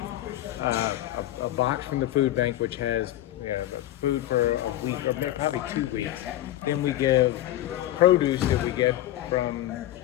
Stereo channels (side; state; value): right; quieter; 14.3 dB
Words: a box from the food bank, which has food for a week or probably 2 weeks. Then we give produce that we get from